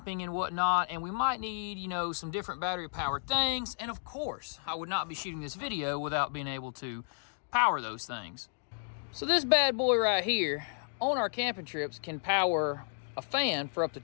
and whatnot, and we might need, you know, some different battery powered things. And of course, I would not be shooting this video without being able to power those things. So this bad boy right here on our camping trips can power a fan for up to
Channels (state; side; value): silent; right; digital silence